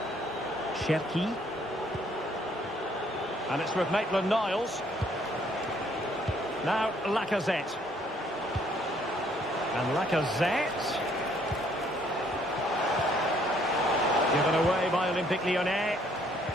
Cherki. And it's with Maitland-Niles. Now Lacazette. And Lacazette. Given away by Olympique Lyonnais.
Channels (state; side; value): normal; both; correlation 0.65